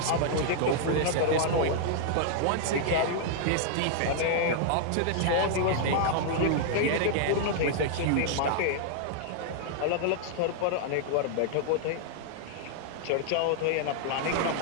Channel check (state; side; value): different; both; correlation -0.01